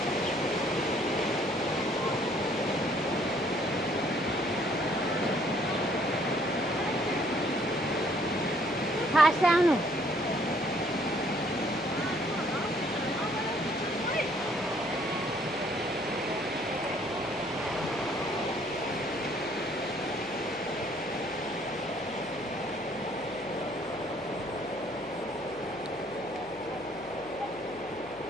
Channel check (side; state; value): left; noise; hum, 21 dB below the sound